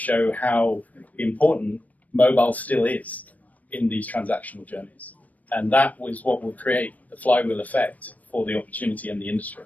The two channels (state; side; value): late; right; 0.074 ms